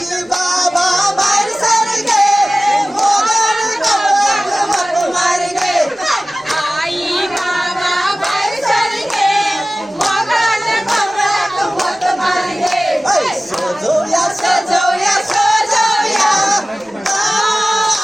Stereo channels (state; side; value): normal; both; correlation 0.97